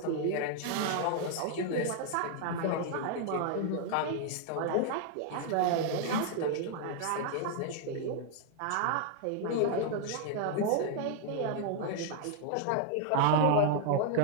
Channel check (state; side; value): different; both; correlation 0.00